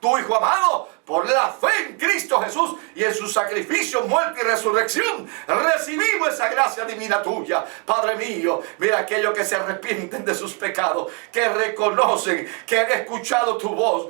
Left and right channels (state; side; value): quieter; left; 36.4 dB